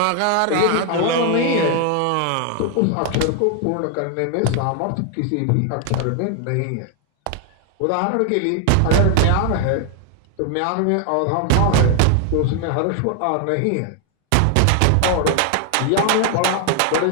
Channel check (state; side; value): different; both; correlation 0.00